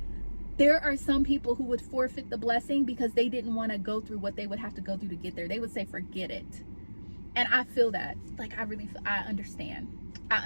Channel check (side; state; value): both; inverted; correlation -1.00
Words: there are some people who would forfeit the blessing because they didn't want to go through what they would have to go through to get there. They would say, forget it. And I feel that, like, I understand,